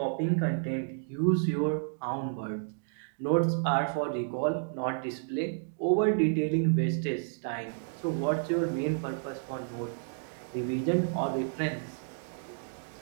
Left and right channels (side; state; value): left; silent; digital silence